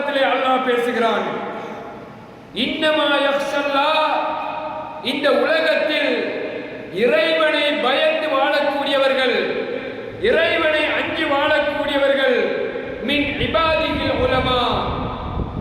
அல்லாஹ் பேசுகிறான், இன்னமா யக்ஷல்லாஹ், இந்த உலகத்தில் இறைவனை பயந்து வாழக்கூடியவர்கள், இறைவனை அஞ்சி வாழக்கூடியவர்கள், மின் இபாதிஹில் உலமா,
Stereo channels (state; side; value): identical; both; correlation 1.00